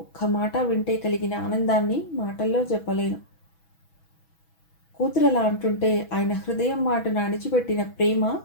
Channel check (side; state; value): right; late; 6.1 ms